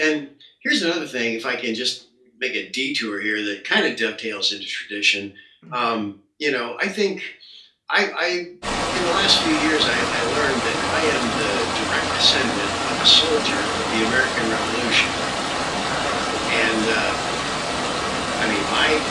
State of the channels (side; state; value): both; identical; correlation 1.00